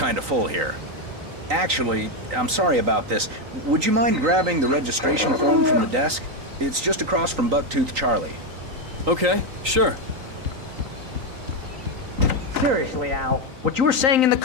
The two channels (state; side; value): late; left; 3.9 ms